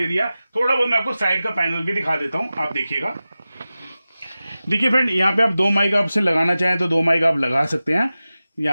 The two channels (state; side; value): inverted; both; correlation -0.95